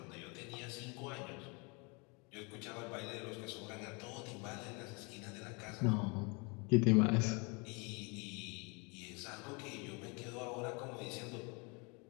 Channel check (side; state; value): right; quieter; 30.5 dB